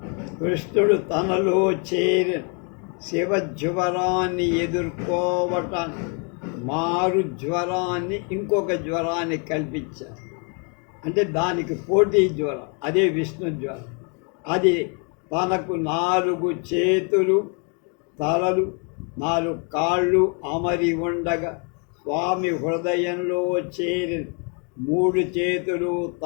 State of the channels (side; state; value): right; quieter; 37.4 dB